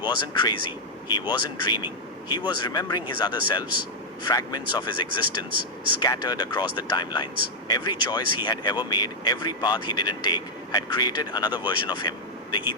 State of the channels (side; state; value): both; normal; correlation -0.02